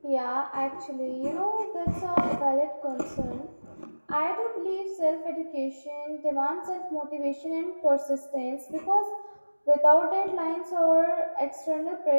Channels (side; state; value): both; inverted; correlation -1.00